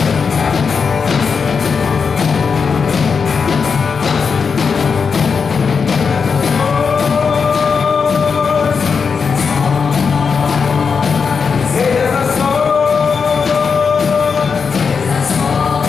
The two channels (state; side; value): quieter; right; 5.7 dB